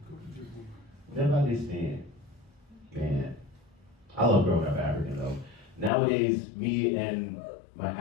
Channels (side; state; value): right; drops out; at 5.9 s